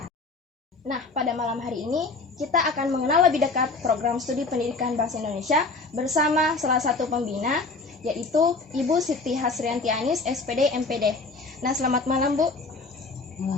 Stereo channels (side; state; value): right; quieter; 3.8 dB